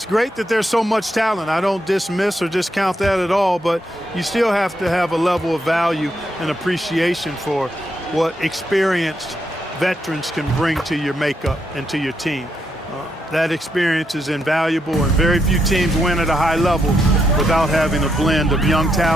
great that there's so much talent. I don't dismiss or discount that at all, but you still have to have a level of value and appreciation for what experienced veterans can bring to your makeup and to your team. That experience is invaluable, and very few teams win at a high level without having a blend of young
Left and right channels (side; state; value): both; normal; correlation 0.80